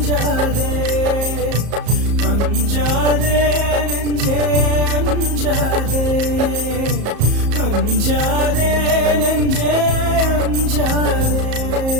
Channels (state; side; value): late; left; 34 ms